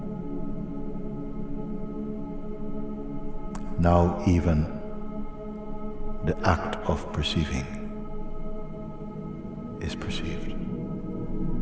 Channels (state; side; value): identical; both; correlation 1.00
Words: Now even the act of perceiving is perceived.